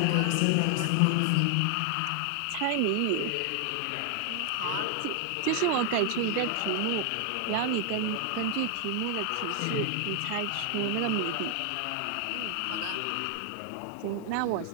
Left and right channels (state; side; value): different; both; correlation 0.00